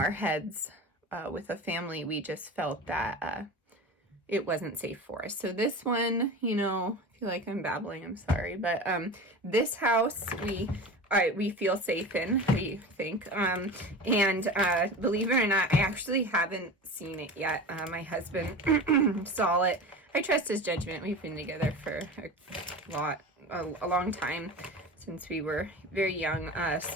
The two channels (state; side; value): normal; both; correlation 0.32